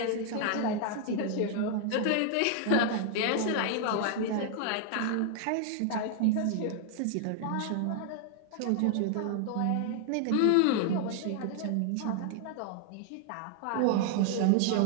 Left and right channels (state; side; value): different; both; correlation 0.00